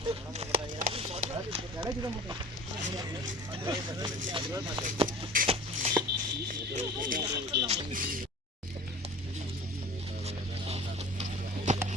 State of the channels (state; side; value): normal; both; correlation 0.42